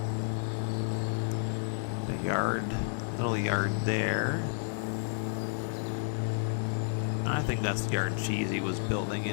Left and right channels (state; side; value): silent; right; 57 dB below the other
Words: The yard, little yard there. I think that's the yard Cheesy was building